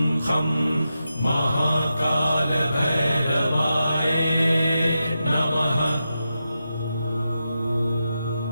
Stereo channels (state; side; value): inverted; both; correlation -0.88